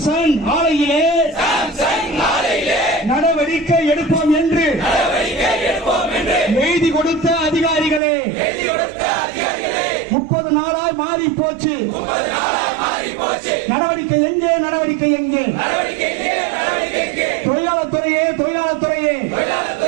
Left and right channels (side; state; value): left; drops out; at 8.0 s